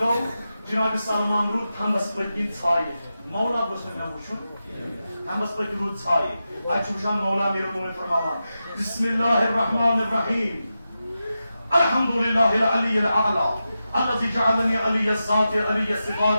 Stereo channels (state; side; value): inverted; both; correlation -0.91